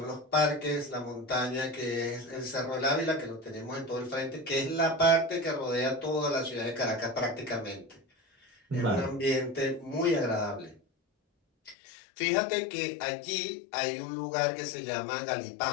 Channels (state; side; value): drops out; right; at 11.8 s